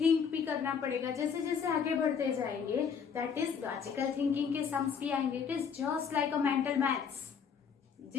भी करना पड़ेगा. जैसे जैसे आगे बढ़ते जाएंगे, दैट इज लॉजिकल थिंकिंग के सम्स भी आएंगे. It is just like a mental maths.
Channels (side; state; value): right; quieter; 6.7 dB